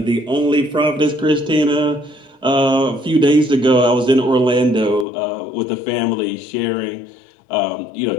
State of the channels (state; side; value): drops out; right; at 5.1 s